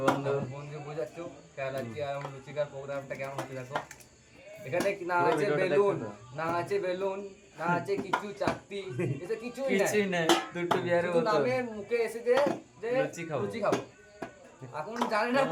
বন্ধু? বন্ধু বুঝাচ্ছ কেরালা আছি, আর লুচি খাওয়ার প্রোগ্রামটা কেমন হচ্ছে দেখো। এখানে না পুরো আছে ভিডিওটা বেলুন, দেখতে দাও। না আছে বেলুন, না আছে কিছু চাকতি, এটা কিছুই কিছুই নাই। নাই, দুটো বিয়ারের শুধু বোতল। নামে মুখে এসেছে যে লুচি খাবো। লুচি খাবো। এখন জানে না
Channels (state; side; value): identical; both; correlation 1.00